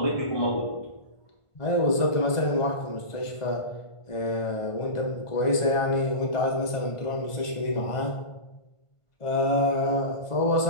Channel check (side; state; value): right; late; 1.5 ms